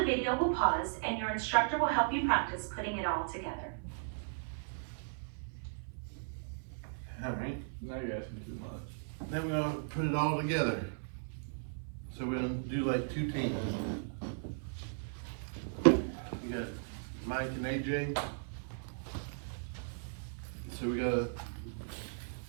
video will pause and your instructor will help you practice putting it all together. All right. Now you're asking too much. Then we're gonna put it all together. So we're gonna do like 2 teams. You got Mike and AJ. So we gotta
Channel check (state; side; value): silent; left; 53 dB below the other